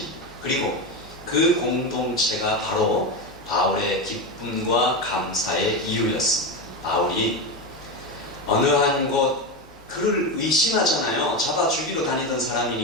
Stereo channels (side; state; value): both; normal; correlation 0.16